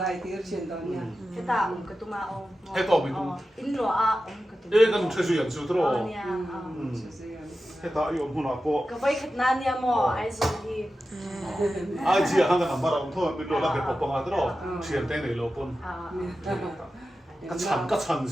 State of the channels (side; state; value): both; normal; correlation 0.93